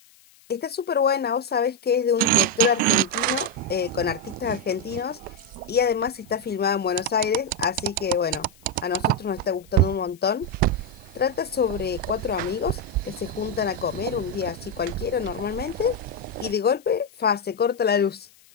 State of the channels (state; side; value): noise; left; hiss, 28 dB below the sound